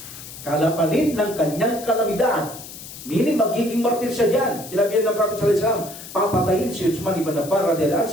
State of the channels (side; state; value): left; noise; hiss, 14 dB below the sound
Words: Kapalit ng kanyang kalamidad. Meaning, magiging martir siya dyan. Sinabi ng Prophet sallallahu alaihi wasallam, papatayin si Uthman ibn Affan radhiyallahu anhu